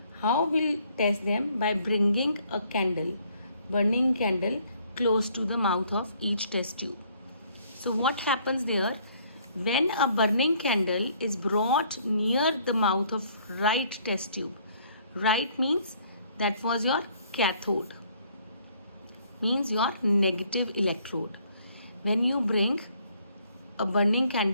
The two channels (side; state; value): both; inverted; correlation -0.63